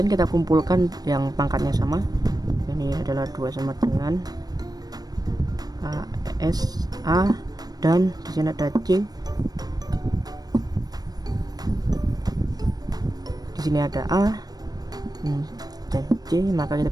kita kumpulkan yang pangkatnya sama, ini adalah 2 sama dengan AS A, dan di sini ada C, di sini ada A dan C, maka kita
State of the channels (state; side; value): late; left; 0.19 ms